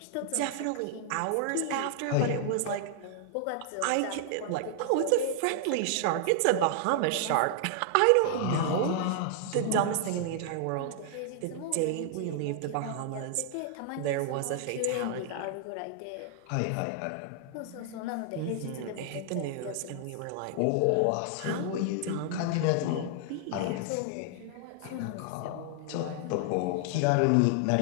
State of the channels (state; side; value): different; both; correlation 0.00